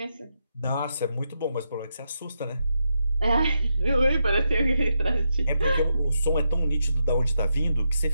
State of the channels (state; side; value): inverted; both; correlation -0.84